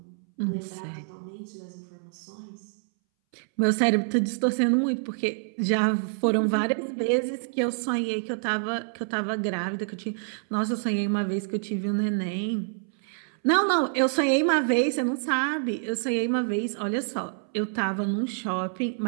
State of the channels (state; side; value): silent; left; 60 dB below the other